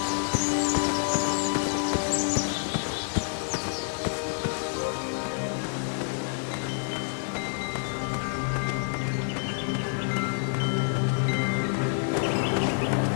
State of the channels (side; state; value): right; silent; 59 dB below the other